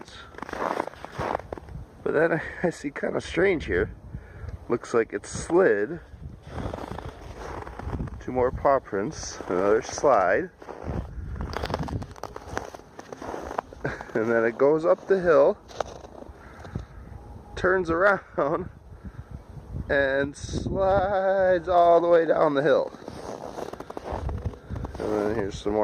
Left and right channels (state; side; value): identical; both; correlation 1.00